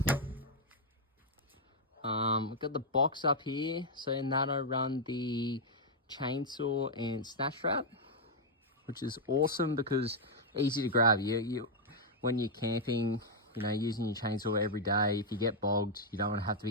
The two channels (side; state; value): both; normal; correlation -0.03